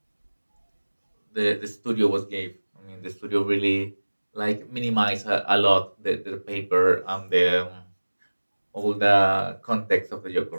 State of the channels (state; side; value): inverted; both; correlation -1.00